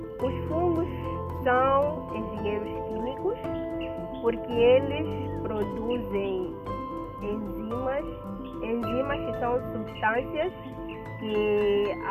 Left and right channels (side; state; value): both; identical; correlation 1.00